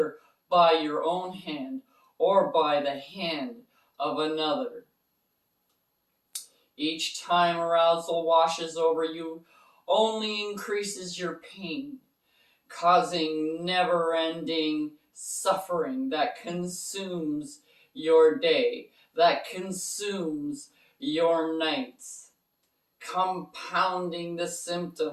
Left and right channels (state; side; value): identical; both; correlation 1.00